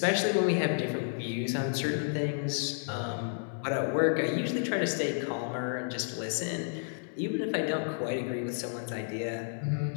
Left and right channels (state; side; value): silent; right; 57 dB below the other